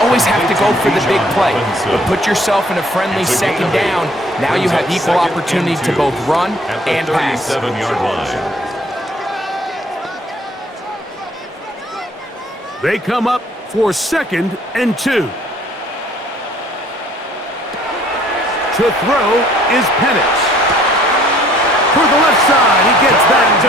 always have to go for the big play, but put yourself in a friendly 2nd down. Now you have equal opportunity to both run and pass. 37-yard line. They come up for 2nd and 2. To throw is Penix. For the left side, he gets that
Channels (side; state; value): both; normal; correlation 0.59